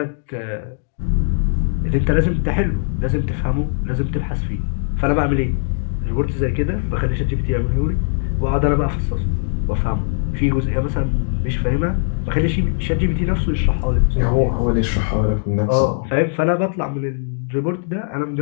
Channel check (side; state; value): right; silent; digital silence